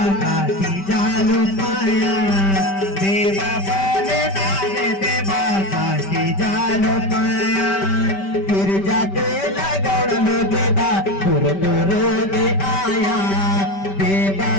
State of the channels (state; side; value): late; right; 5.1 ms